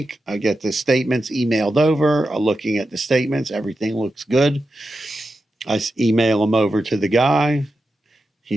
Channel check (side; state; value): both; normal; correlation 0.90